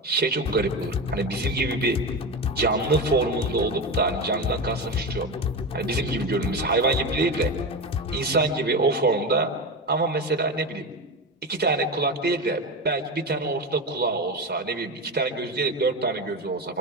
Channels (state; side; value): normal; both; correlation 0.21